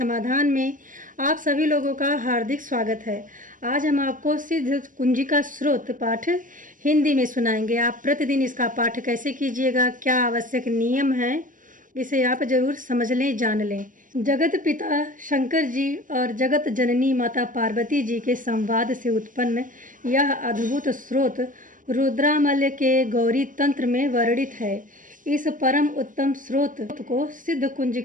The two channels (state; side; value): late; left; 0.38 ms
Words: में आप सभी लोगों का हार्दिक स्वागत है। आज हम आपको सिद्ध कुंजिका स्रोत पाठ हिंदी में सुनाएंगे। आप प्रतिदिन इसका पाठ कैसे कीजिएगा, क्या आवश्यक नियम हैं, इसे आप जरूर समझ लें, जान लें। जगत पिता शंकर जी और जगत जननी माता पार्वती जी के संवाद से उत्पन्न यह अद्भुत स्रोत रुद्रामल्य के गौरी तंत्र में वर्णित है। इस परम उत्तम स्रोत को सिद्ध